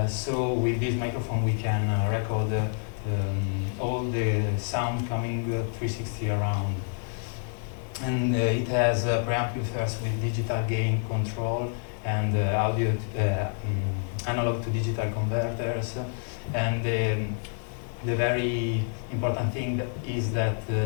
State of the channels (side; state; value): right; silent; 59 dB below the other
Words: So with this microphone we can record all the sound coming 360 around. And it has preamplifiers with digital gain control and audio analog to digital converters. And the very important thing is that